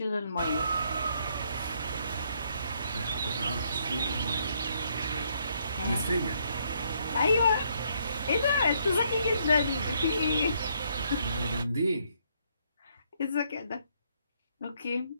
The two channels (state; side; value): inverted; both; correlation -0.71